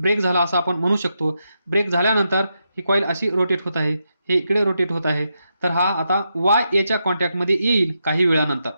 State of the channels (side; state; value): both; inverted; correlation -0.84